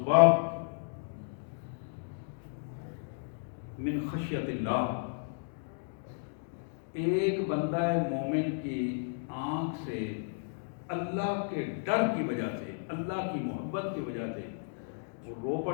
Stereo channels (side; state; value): right; silent; digital silence